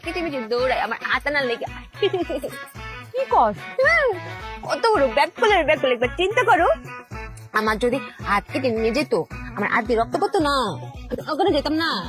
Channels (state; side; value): identical; both; correlation 1.00